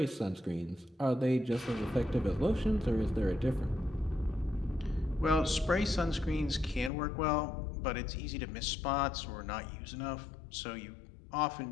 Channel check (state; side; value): drops out; right; at 6.9 s